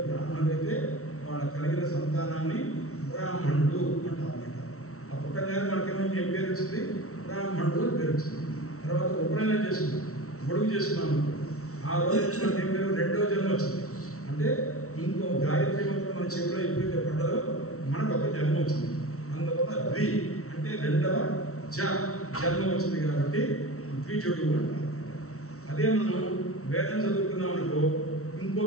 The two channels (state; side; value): late; right; 0.64 ms